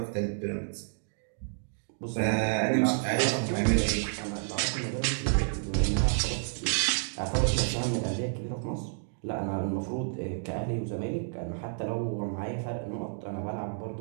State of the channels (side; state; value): left; silent; digital silence